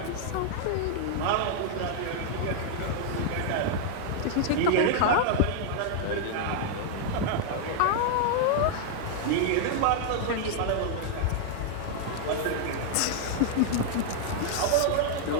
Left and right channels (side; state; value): both; different; correlation -0.01